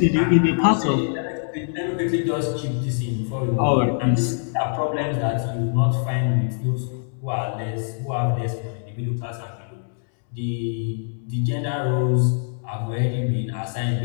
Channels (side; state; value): right; silent; digital silence